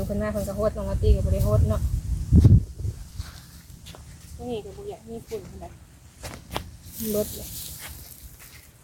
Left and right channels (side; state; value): both; identical; correlation 1.00